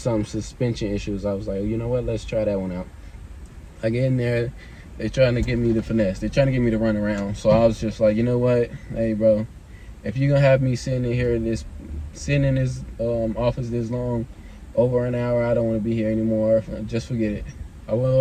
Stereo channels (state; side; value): identical; both; correlation 1.00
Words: suspension issues. I was like, you know what, let's try that one out. I get in there, they're trying to get me to finesse. They're trying to get me to run around. So I was just like, you know what, hey bro, if you're gonna have me sitting in here, sitting in this office this long, over an hour, I don't want to be here anymore. Just forget it. I went